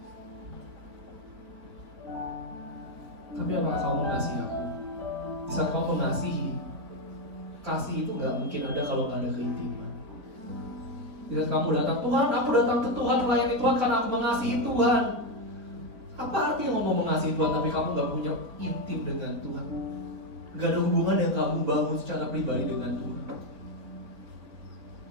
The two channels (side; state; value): left; late; 4.2 ms